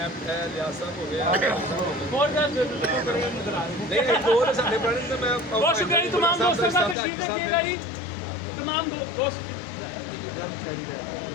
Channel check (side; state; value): right; drops out; at 7.0 s